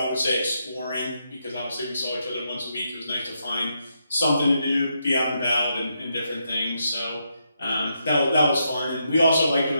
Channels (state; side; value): inverted; both; correlation -0.81